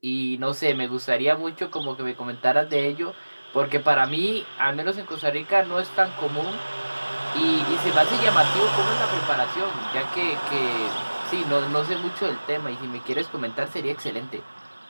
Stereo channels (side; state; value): both; inverted; correlation -1.00